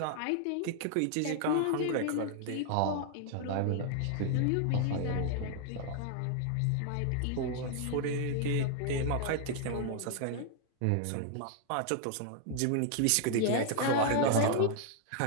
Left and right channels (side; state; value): both; different; correlation 0.00